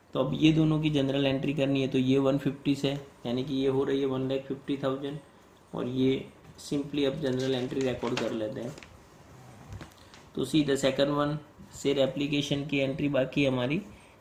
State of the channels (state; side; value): identical; both; correlation 1.00